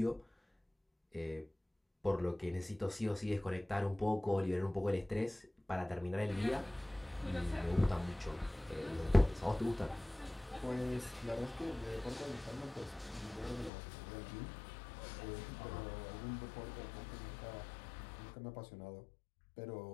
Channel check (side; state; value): right; drops out; at 13.7 s